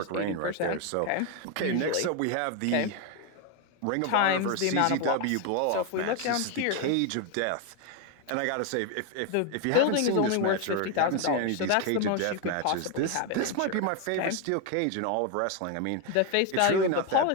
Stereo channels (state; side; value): different; both; correlation 0.02